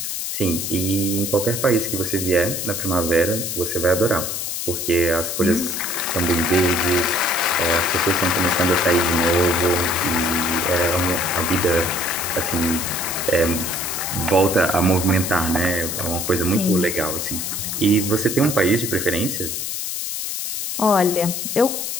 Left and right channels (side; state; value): left; noise; hiss, 3 dB below the sound